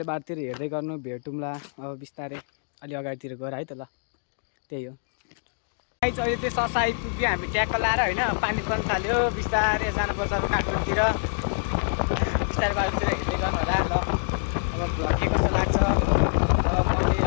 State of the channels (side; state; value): right; silent; digital silence